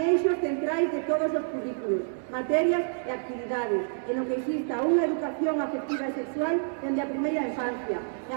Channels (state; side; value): silent; left; digital silence